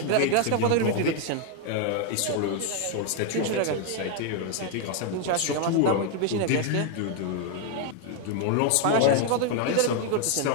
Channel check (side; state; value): both; different; correlation 0.01